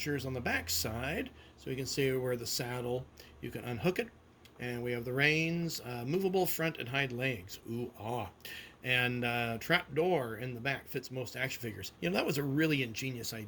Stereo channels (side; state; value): both; identical; correlation 1.00